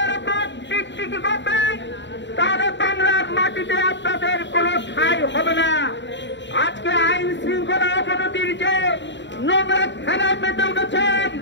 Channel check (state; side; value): late; right; 0.53 ms